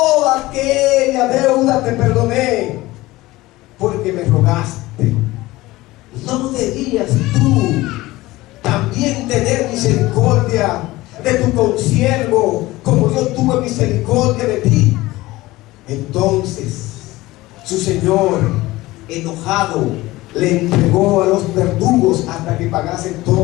aquella deuda te perdoné porque me rogaste. ¿No debías tú también tener misericordia de tu consiervo como yo tuve misericordia de ti? Entonces su señor, enojado, le entregó a los verdugos hasta que pagase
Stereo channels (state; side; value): quieter; right; 18.8 dB